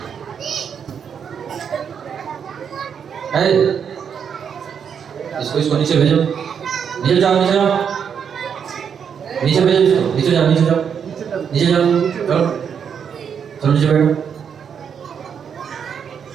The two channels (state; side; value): quieter; left; 7.4 dB